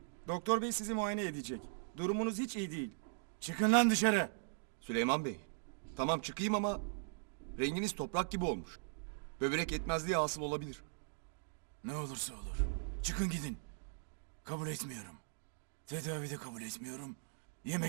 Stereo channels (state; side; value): silent; left; digital silence